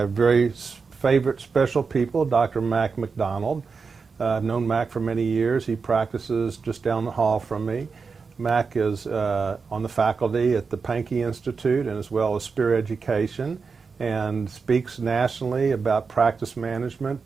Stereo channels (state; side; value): quieter; left; 5.0 dB